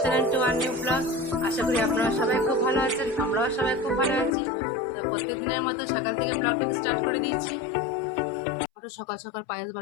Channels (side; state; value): right; drops out; at 4.4 s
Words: channel to our new blog. আশা করি আপনারা সবাই খুব ভালো আছেন, আমরাও সবাই খুব ভালো আছি। তো প্রত্যেক দিনের মতো সকাল থেকে ব্লগটিকে স্টার্ট করে দিয়েছি। আমারও সকাল সকাল পায়েস